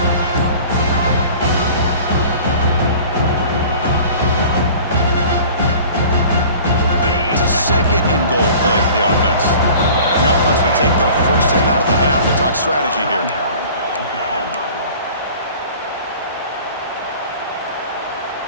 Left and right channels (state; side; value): inverted; both; correlation -0.44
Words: It's a second and goal play for the offense. The offense will take their first 10 out of the half to talk strategy here.